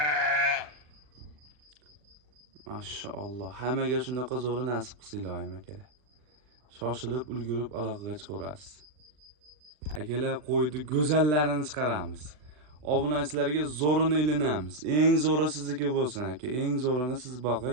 Mashalloh. Hammaga shunaqa zo'ri nasib qilsin ilohim akalar. Shoshilib, ulgurib aloqaga chiqarasiz. Akalar, qo'ydi go'zallarini chiqaramiz. Obunachilarga zo'rini ilinamiz. Eng zo'ri sizniki bo'lsin aka. Eng zo'rini siz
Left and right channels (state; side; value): late; left; 40 ms